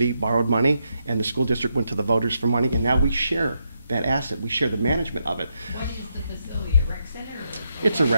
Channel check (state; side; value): inverted; both; correlation -0.81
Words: borrowed money and the school district went to the voters for money, and now we share that asset. We share the management of it. What is the facility, a rec center? It's a